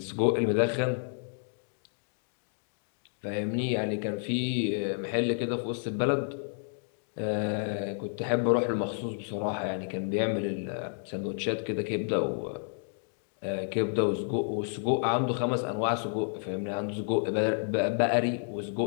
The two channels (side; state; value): right; silent; digital silence